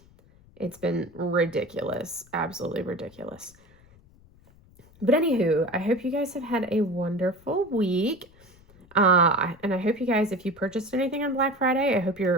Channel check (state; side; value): noise; left; rumble, 27 dB below the sound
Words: It's been ridiculous, absolutely ridiculous. But anywho, I hope you guys have had a wonderful week. And I hope you guys, if you purchased anything on Black Friday, I hope